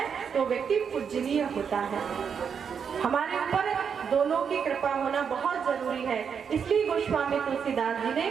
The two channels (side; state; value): left; quieter; 6.9 dB